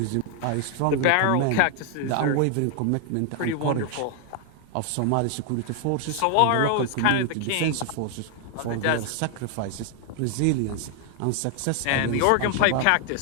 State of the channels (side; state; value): both; different; correlation 0.00